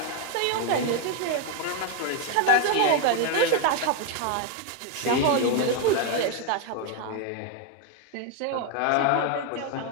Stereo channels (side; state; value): both; different; correlation 0.01